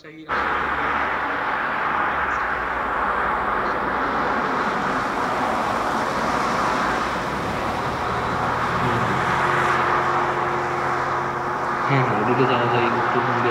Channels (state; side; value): identical; both; correlation 1.00